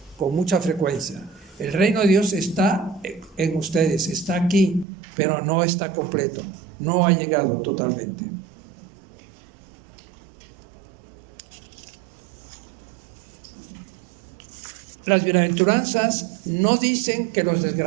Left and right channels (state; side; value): drops out; left; at 4.9 s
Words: con mucha frecuencia. El reino de Dios está en ustedes, está aquí, pero no está completo, no ha llegado totalmente. Las bienaventuranzas no dicen que los